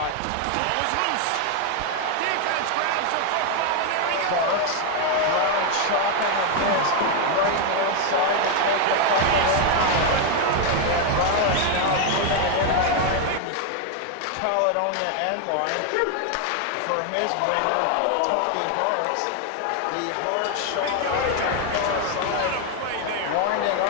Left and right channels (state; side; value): different; both; correlation 0.01